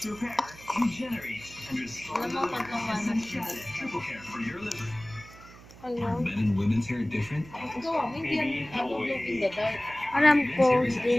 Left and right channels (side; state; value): right; noise; hum, 20 dB below the sound